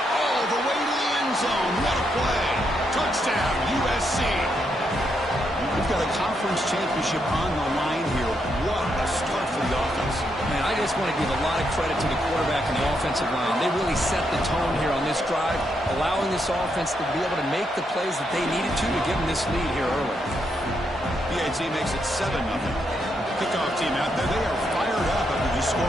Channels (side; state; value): both; normal; correlation 0.79